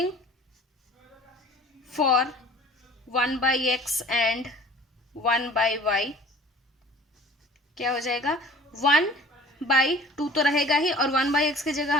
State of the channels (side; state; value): both; normal; correlation 0.47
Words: for 1/x and 1/y क्या हो जाएगा, 1/2 तो रहेगा ही और 1/x की जगह